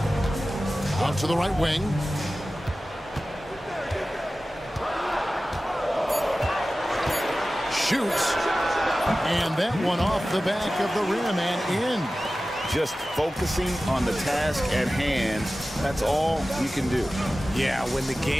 Out to the right wing. Shoots. And that one off the back of the rim and in. Just focusing on the task at hand. That's all you can do. Yeah, when the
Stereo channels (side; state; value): both; normal; correlation 0.95